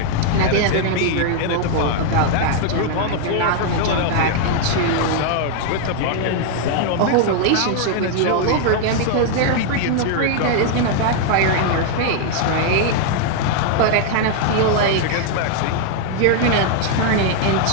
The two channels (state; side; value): different; both; correlation 0.00